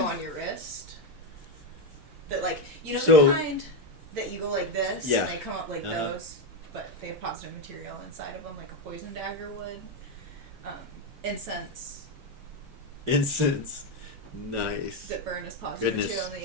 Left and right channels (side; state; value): both; normal; correlation 0.07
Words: on your wrist. That like So- the kind that you go like this Yeah. and they come up like Uh-huh. those, but they have positive material inside of them, like a poison dagger would. Incense Incense. Nice. that burn as positive Goodness. material in